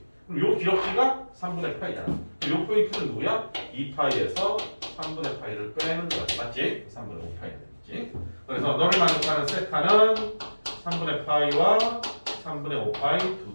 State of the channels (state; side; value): inverted; both; correlation -1.00